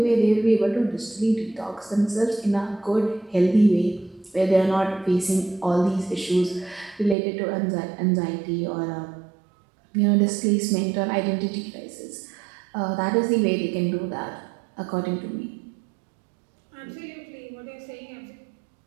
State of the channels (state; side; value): drops out; left; at 7.2 s